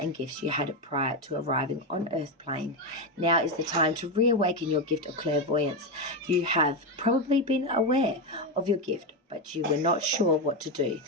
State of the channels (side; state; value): both; normal; correlation 0.10